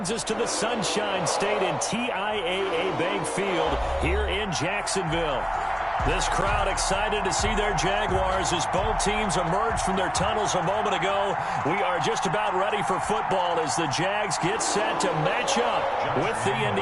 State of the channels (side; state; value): both; identical; correlation 1.00